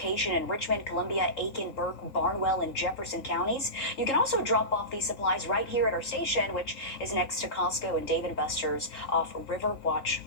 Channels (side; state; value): right; late; 3.8 ms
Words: in Richmond, Columbia, Aiken, Burke, Barnwell, and Jefferson counties. You can also drop off these supplies right here at our station, which is next to Costco and Dave & Buster's off Riverwatch